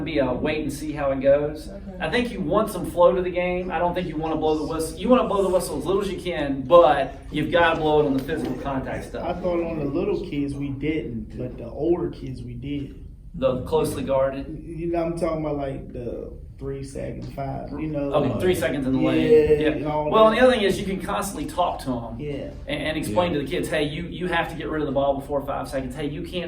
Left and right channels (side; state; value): both; identical; correlation 1.00